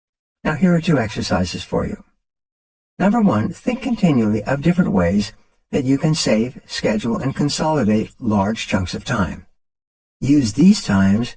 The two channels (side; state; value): both; identical; correlation 1.00